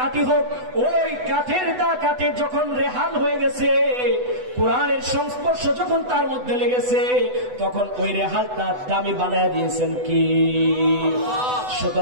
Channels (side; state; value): left; late; 8.0 ms